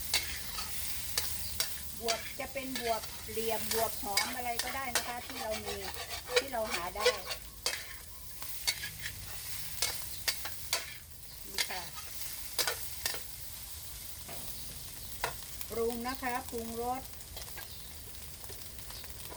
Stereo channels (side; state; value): both; identical; correlation 1.00